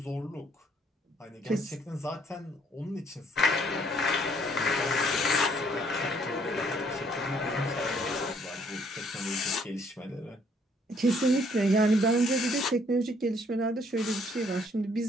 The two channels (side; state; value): both; normal; correlation 0.65